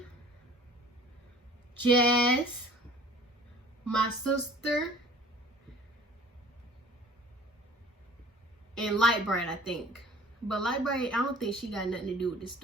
Jazz, my sister, and Lightbright, I think. But Lightbright, I don't think she got nothing to do with this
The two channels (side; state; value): both; normal; correlation 0.48